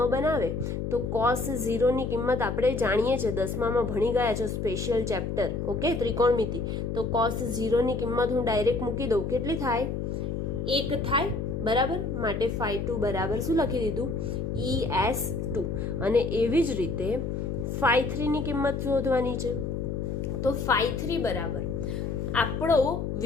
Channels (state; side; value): noise; left; hum, 3 dB below the sound